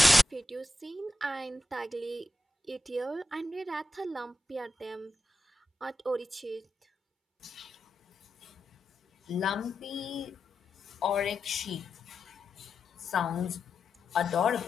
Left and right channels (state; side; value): normal; both; correlation 0.88